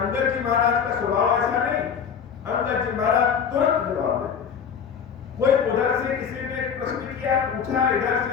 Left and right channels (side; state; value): right; quieter; 7.1 dB